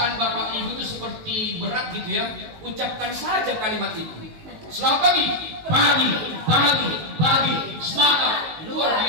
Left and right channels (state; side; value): late; left; 19 ms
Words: Bapak Ibu itu seperti berat gitu ya, ucapkan saja kalimat itu. Selamat pagi, pagi, pagi, pagi, semangat, luar